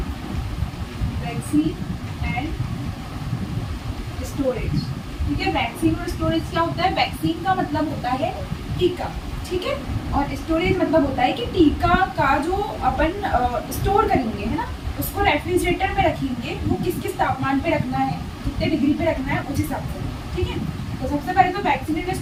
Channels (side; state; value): both; identical; correlation 1.00